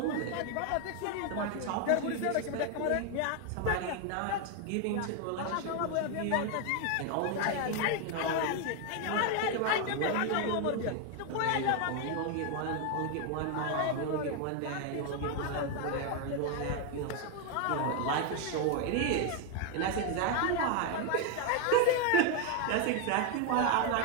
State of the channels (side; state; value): both; different; correlation 0.01